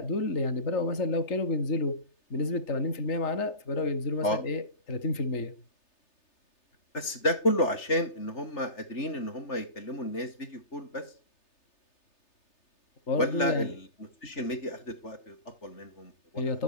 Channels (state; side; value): late; right; 3.3 ms